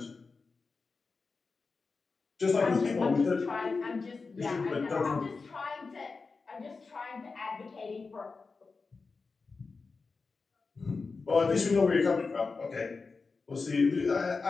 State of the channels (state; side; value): quieter; right; 4.4 dB